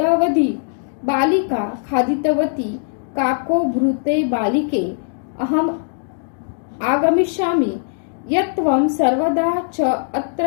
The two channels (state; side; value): silent; right; digital silence